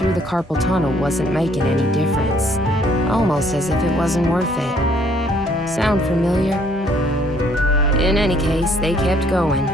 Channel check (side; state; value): both; normal; correlation 0.64